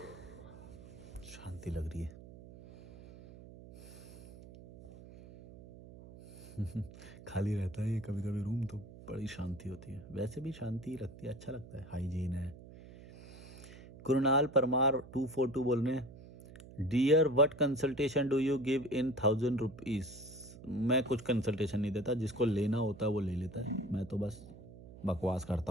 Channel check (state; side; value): noise; right; hum, 17 dB below the sound